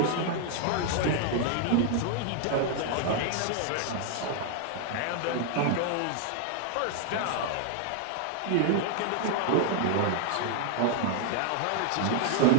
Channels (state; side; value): different; both; correlation 0.00